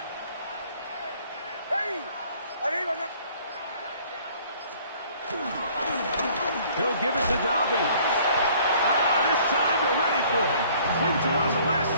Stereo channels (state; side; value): inverted; both; correlation -0.56